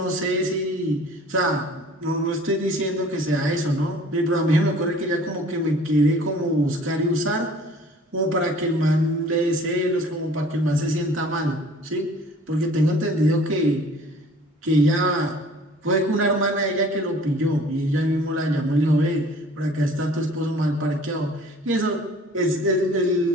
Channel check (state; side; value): normal; both; correlation 0.50